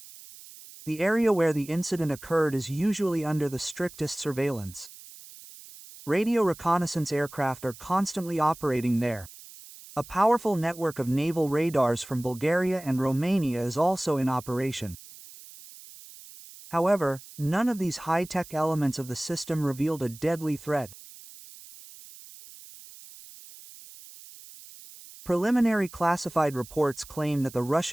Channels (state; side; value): noise; right; hiss, 18 dB below the sound